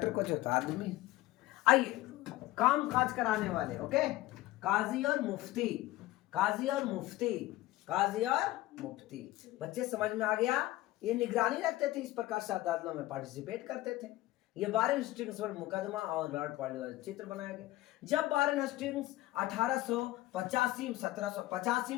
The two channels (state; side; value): quieter; right; 17.2 dB